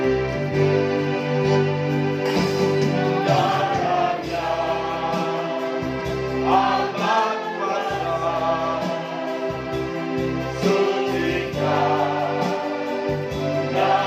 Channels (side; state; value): both; identical; correlation 1.00